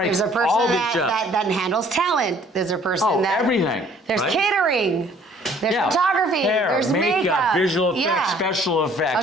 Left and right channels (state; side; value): normal; both; correlation 0.58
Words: There's a person all these jobs. that handles talent. There's a person that... everything. There's catering. There's photography. Hair, there's makeup. Visual effects, special